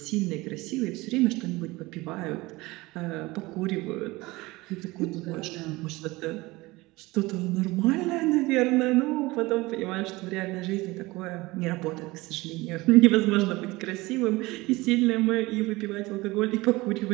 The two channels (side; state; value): left; quieter; 21.3 dB